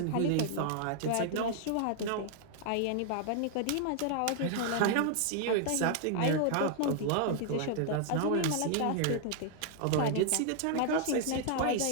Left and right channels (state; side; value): different; both; correlation 0.00